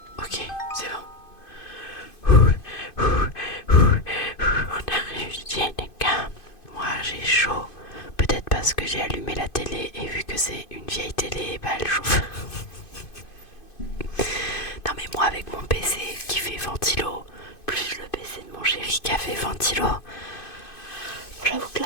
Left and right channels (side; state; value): right; late; 2.5 ms